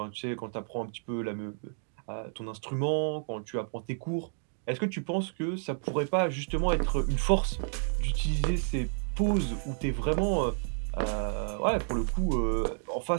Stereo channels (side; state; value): left; silent; 57 dB below the other